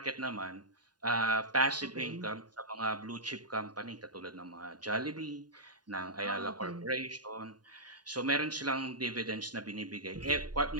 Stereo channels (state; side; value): late; left; 0.70 ms